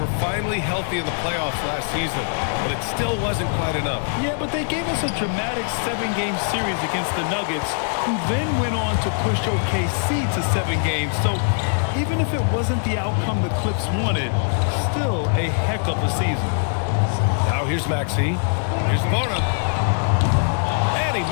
finally healthy in the playoffs last season, but it still wasn't quite enough. Yeah, but they gave us a dramatic 7-game series against the Nuggets, who then went on to push OKC to 7 games. So even if it wasn't the outcome the Clips wanted, still a heck of a season. Now here's Maxey. Here's Bona. And he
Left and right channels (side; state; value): right; silent; digital silence